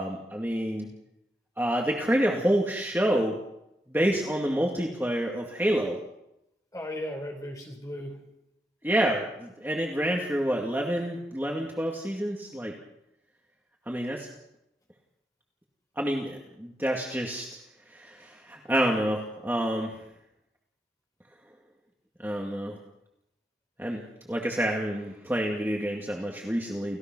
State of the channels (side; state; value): both; normal; correlation 0.84